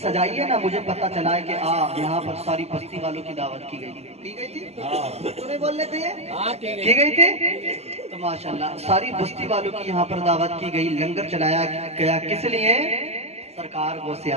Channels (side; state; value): left; late; 0.30 ms